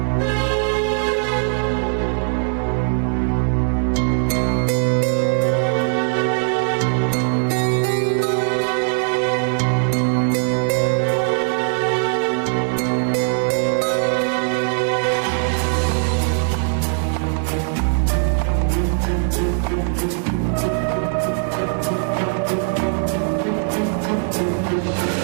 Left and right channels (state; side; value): silent; left; 66 dB below the other